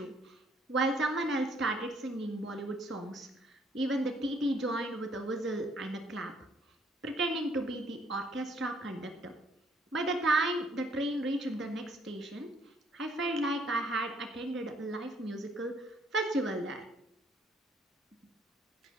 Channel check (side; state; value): both; normal; correlation 0.65